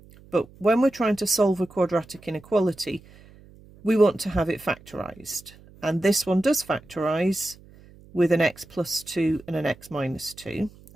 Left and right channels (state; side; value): noise; right; hum, 24 dB below the sound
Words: But when we're trying to solve a quadratic inequality, we want to have it factorised. And this one does factorise with an x plus 2 and an x minus 2.